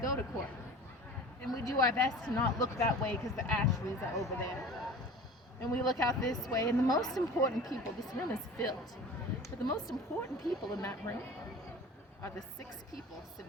to court. And we do our best to not look that way because the Ashleys are over there. And we look out this way, and the most important people, this room is filled, but the most important people in that room are the 6 people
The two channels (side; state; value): both; normal; correlation 0.39